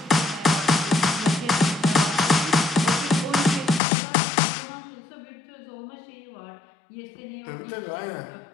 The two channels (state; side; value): drops out; right; at 3.8 s